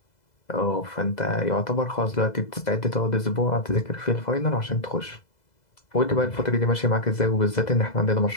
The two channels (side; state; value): right; late; 2.0 ms